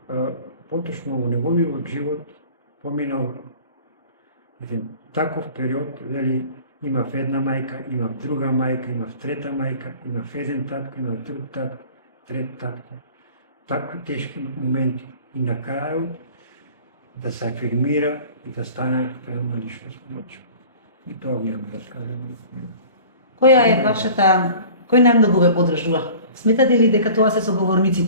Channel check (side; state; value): both; inverted; correlation -0.44